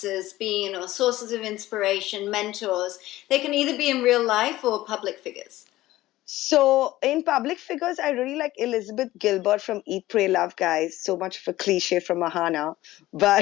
been, or sources of inspiration, mentors? They can either be in real life or public figures. So in public figures, I really like Elizabeth Gilbert from Eat, Pray, Love, guys. So much of a cliche from Aahana,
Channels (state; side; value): quieter; right; 16.3 dB